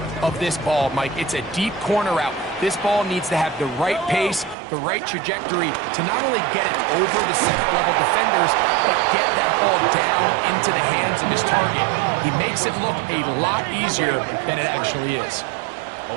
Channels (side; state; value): left; drops out; at 4.5 s